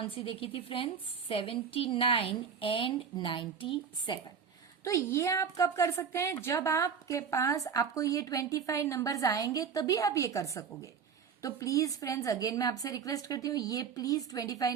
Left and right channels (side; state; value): left; quieter; 6.7 dB